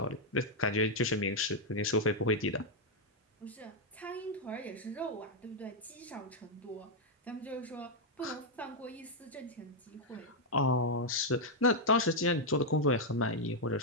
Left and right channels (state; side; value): normal; both; correlation -0.02